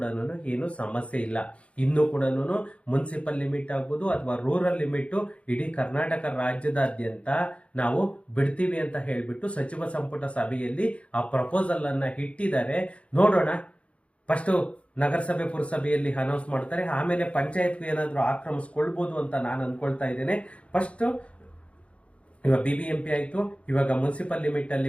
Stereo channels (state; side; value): late; right; 0.061 ms